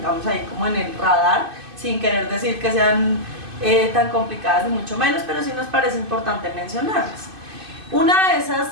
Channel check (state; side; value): late; left; 2.5 ms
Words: ahí como en el radar, sin querer decir que sean tan complicadas ni mucho menos, pero sí nos parece importante mencionarlas. Una